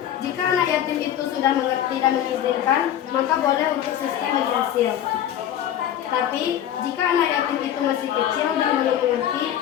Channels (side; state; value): right; quieter; 10.8 dB